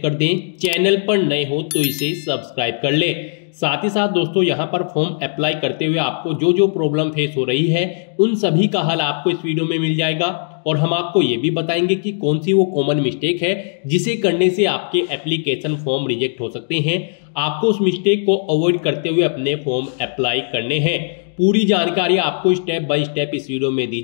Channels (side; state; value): right; silent; digital silence